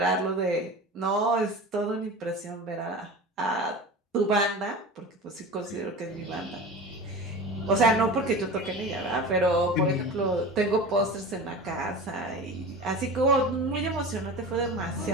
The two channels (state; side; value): normal; both; correlation 0.33